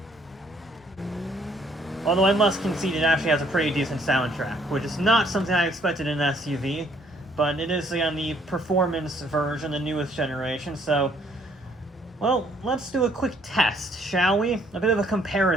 Although I must concede it actually has a pretty decent soundtrack, which is not something I expected in an SUV. But it is on the performance version, the newest generation, so... Well, let's do a quick test, shall we? A bit of a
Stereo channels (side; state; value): both; normal; correlation 0.65